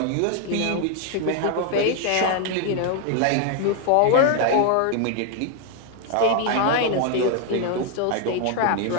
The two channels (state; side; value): different; both; correlation 0.01